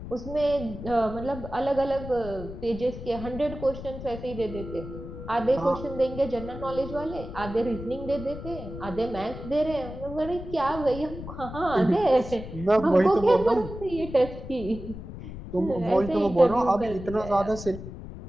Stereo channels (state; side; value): noise; left; rumble, 11 dB below the sound